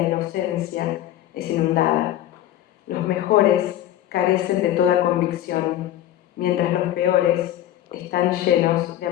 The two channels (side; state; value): right; quieter; 12.8 dB